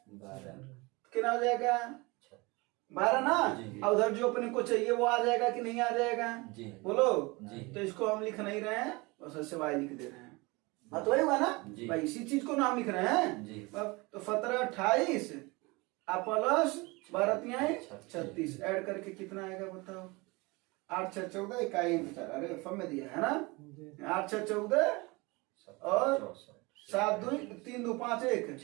12, कितना हो जाएगा 12 ना। और उधर जो अपने को चाहिए वो आ जाएगा कि नहीं आ जाएगा बोलो। तो इसको हम लिख नहीं रहे हैं, बस ऐसे वाई लिख दे रहे हैं। बात वही हुआ ना भाई, इसी चीज को नाम लिख रहे हैं। तो 1728 प्लस 12 36 ऐड करके कितना आएगा बताओ 8 6 14 इकाई अरे फम में दिया है ना 8 6 14 और 7 2 3 2 5 1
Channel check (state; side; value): quieter; left; 25.0 dB